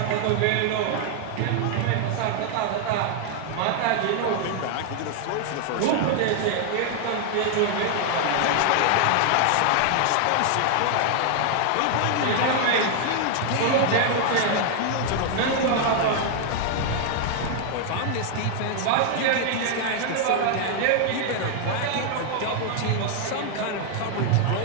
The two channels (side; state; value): both; different; correlation 0.00